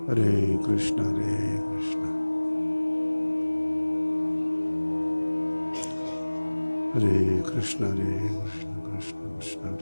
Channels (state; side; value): inverted; both; correlation -1.00